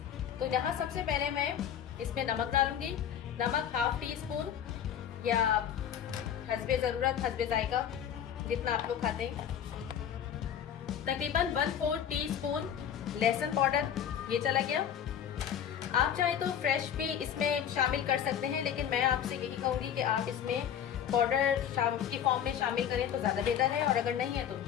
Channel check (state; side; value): quieter; right; 9.2 dB